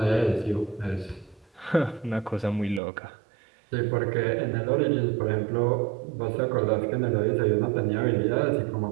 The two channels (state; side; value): drops out; left; at 2.8 s